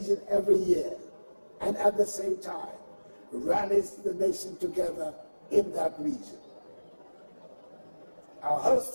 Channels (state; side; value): inverted; both; correlation -1.00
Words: every year, and at the same time rallies the nation together in that region. Our host